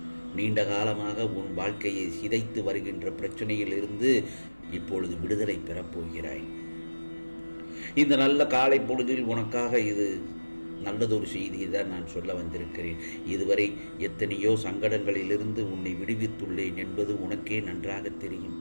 நீண்ட காலமாக உன் வாழ்க்கையை சிதைத்து வருகின்ற பிரச்சனையில் இருந்து இப்பொழுது விடுதலை பெறப்போகிறாய். இந்த நல்ல காலை பொழுதில் உனக்காக இது நல்லதொரு செய்தியை தான் நான் சொல்ல வந்திருக்கிறேன். இதுவரை எத்தனையோ சங்கடங்களிலிருந்து உன்னை விடுவித்துள்ளேன் என்பது உனக்கே நன்றாக தெரியும்.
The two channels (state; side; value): inverted; both; correlation -1.00